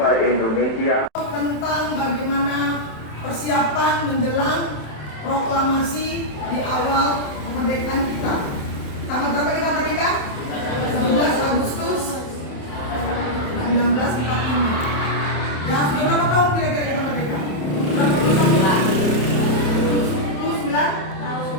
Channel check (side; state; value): right; late; 27 ms